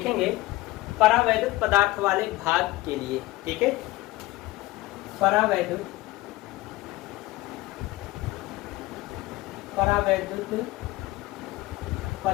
परावैद्युत पदार्थ वाले भाग के लिए, ठीक है। परावैद्युत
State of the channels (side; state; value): right; quieter; 19.1 dB